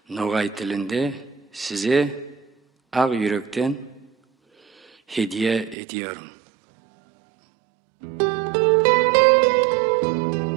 Ногай тилинде сизе ак жүрөктөн hediye ediyorum.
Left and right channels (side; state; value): left; drops out; at 5.8 s